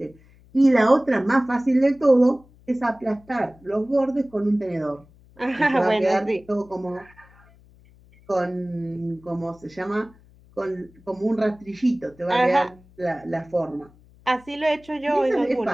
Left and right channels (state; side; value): noise; left; hum, 27 dB below the sound